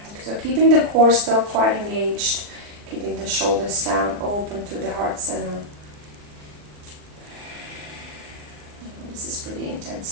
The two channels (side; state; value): left; late; 39 ms